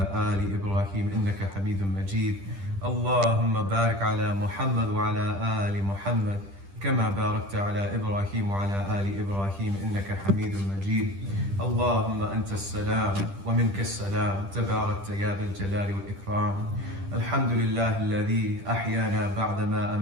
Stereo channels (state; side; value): late; left; 10 ms